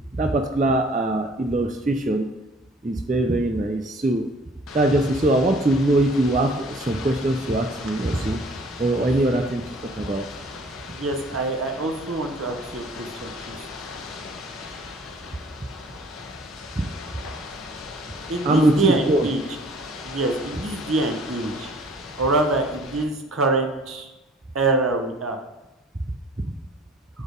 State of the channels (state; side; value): normal; both; correlation 0.54